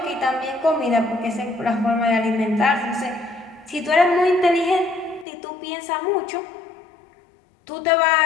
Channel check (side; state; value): right; drops out; at 5.2 s